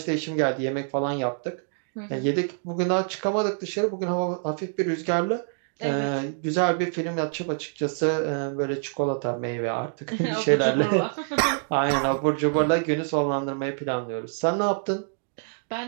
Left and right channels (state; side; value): silent; left; 61 dB below the other